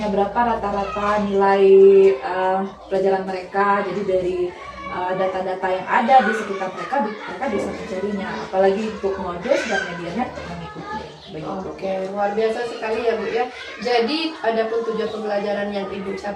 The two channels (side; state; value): both; identical; correlation 1.00